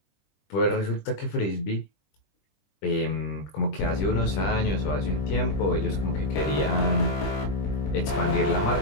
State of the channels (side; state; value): right; late; 20 ms